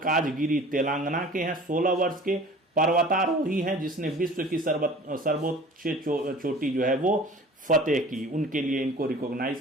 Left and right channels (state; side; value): normal; both; correlation 0.44